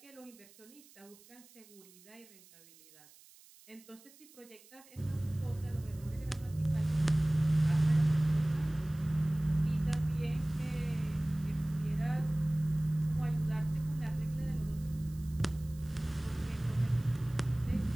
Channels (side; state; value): right; noise; hiss, 24 dB below the sound